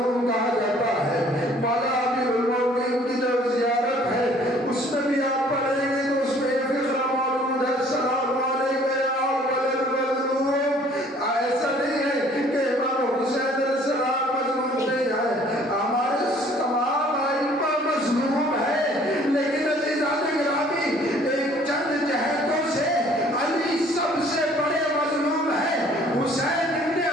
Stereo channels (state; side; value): normal; both; correlation 0.56